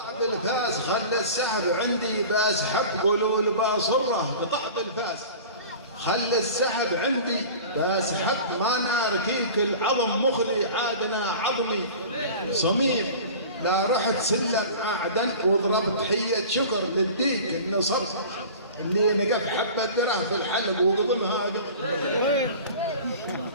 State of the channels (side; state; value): both; inverted; correlation -0.38